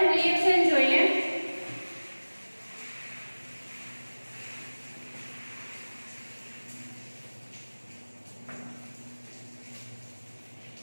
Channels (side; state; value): both; inverted; correlation -1.00